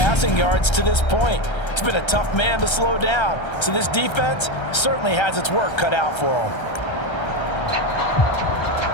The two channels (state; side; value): late; right; 1.3 ms